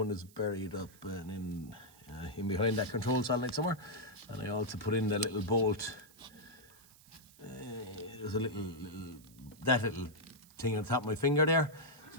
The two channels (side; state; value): right; noise; hiss, 24 dB below the sound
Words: is buried up and in behind that control solenoid somewhere. And I also put in the little bolt. There's a little thing on the top of my finger there.